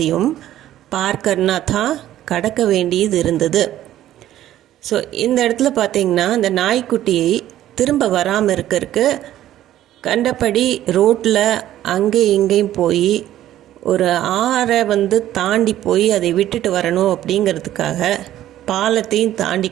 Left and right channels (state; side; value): quieter; left; 13.0 dB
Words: பார் கர்னா தா கடக்க வேண்டியது இருந்தது. ஸோ இந்த இடத்துல பார்த்தீங்கன்னா இந்த நாய்க்குட்டியை திரும்ப வராமல் இருக்கிறதுக்கு கண்டபடி ரோட்டில் அங்கே இங்கேயும் போய் ஒரு ஆறை தாண்டி போய் அதை விட்டுட்டு வரணும் அப்படிங்கிறதுக்காக பாலத்தையும் தாண்டி